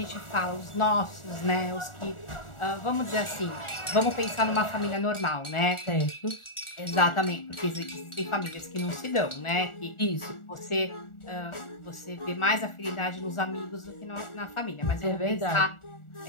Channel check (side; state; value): right; late; 1.4 ms